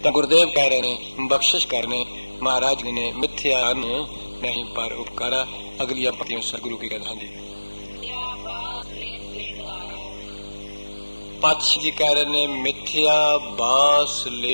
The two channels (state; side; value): inverted; both; correlation -1.00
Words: तो गुरुदेव कह रहे ने, बख्शिश करने महाराज ने मिथ्या नहीं पर उपकारा। अगली पंक्तियों सतगुरु की कहना जी। पातशाह जी कह रहे ने मिथ्या बास